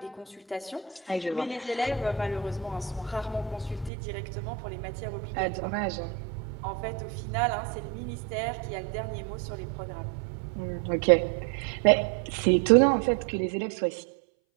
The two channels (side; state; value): left; drops out; at 3.9 s